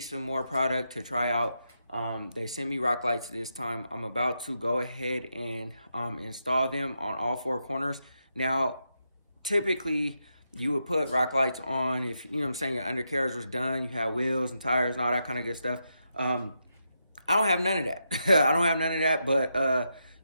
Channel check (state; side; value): inverted; both; correlation -0.84